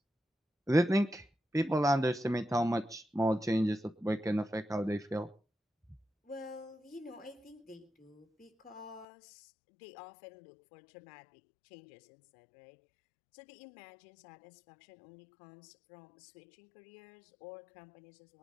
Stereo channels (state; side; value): drops out; right; at 9.1 s